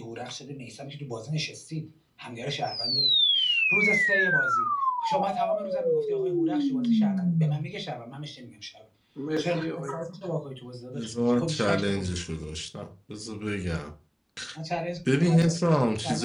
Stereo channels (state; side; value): identical; both; correlation 1.00